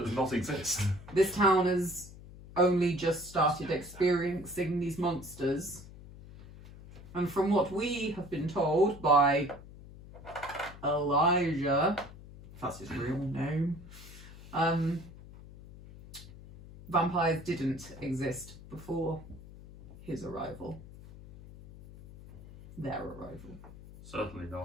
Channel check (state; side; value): noise; left; hum, 17 dB below the sound